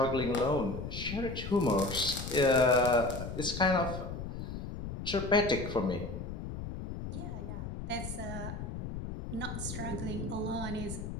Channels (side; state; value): left; noise; rumble, 6 dB below the sound